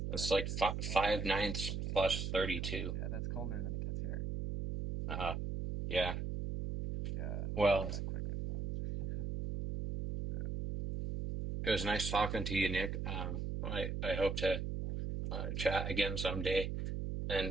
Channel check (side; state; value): right; noise; hum, 2 dB below the sound